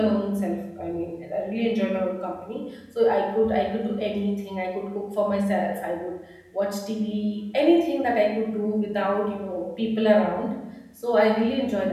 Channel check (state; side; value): identical; both; correlation 1.00